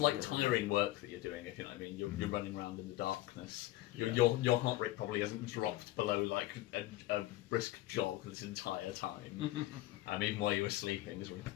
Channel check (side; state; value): right; quieter; 16.6 dB